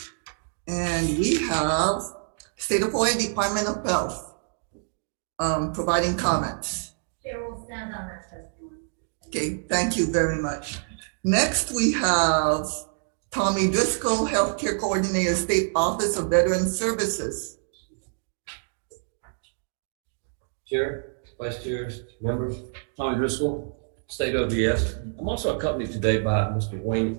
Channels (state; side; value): silent; left; digital silence